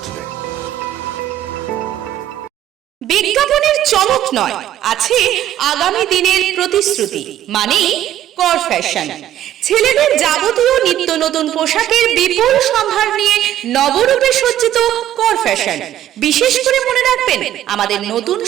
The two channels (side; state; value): left; quieter; 12.2 dB